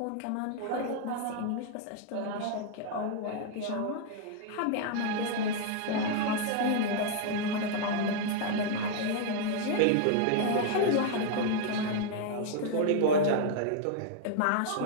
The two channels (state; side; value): different; both; correlation 0.00